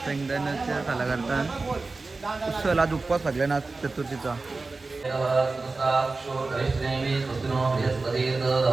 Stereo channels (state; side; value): quieter; left; 3.7 dB